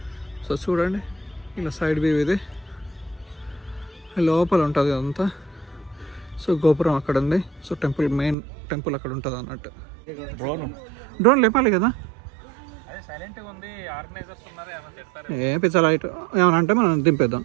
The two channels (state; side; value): drops out; left; at 8.3 s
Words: సో చూడండి ఇలా సైడ్ వ్యూ ఇది, లోపల ఉంటుంది అదంతా. సో గోపురం అక్కడ ఉంది. సో టెంపుల్ మెయిన్ టెంపుల్ అక్కడ ఉంటుంది అన్నట్టు. డ్రోన్ లేపాలి కదా, ఏ పిచ్చా లైట్ ఏమన్నా అంటే మనం దింపేద్దాం.